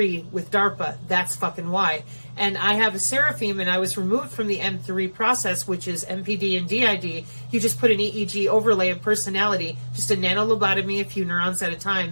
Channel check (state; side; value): inverted; both; correlation -1.00